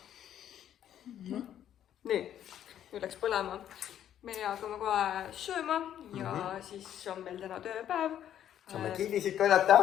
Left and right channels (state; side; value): quieter; right; 10.6 dB